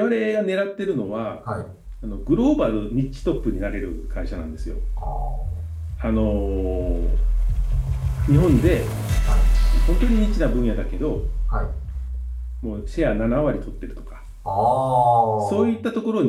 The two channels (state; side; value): identical; both; correlation 1.00